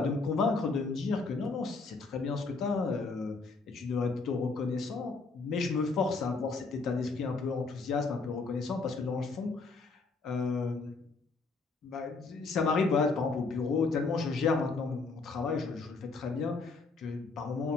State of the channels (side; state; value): right; quieter; 4.1 dB